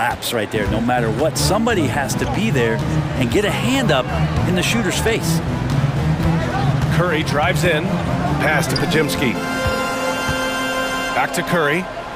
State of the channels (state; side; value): identical; both; correlation 1.00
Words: right there. No matter what, somebody has to be there and get a hand up in the shooter's face. Curry drives in. Pass to Podziemski. Back to Curry.